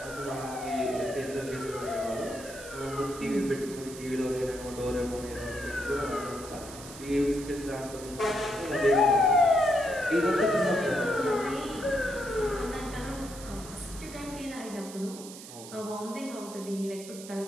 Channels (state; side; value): noise; right; hiss, 14 dB below the sound